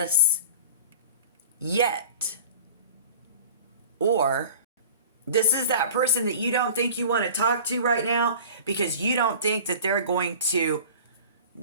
yet. Or this is that person that you don't think you want to talk to right now because you don't think that they're going to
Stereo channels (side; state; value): both; inverted; correlation -0.40